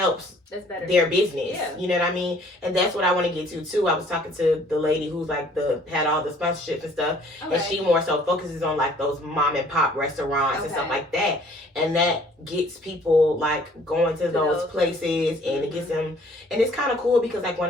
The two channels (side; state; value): both; normal; correlation 0.57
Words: that's better. Their business. Yeah. You know what I mean? And that's what I want to get to too. I was talking to the lady who's like had all the sponsorships and stuff, and she more so focuses on like those mom and pop restaurants and stuff like that, and that gets people like going to those places, and it gets them, and it's kind of cool because like when